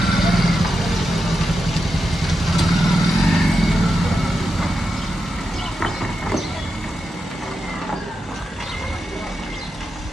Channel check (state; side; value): normal; both; correlation 0.88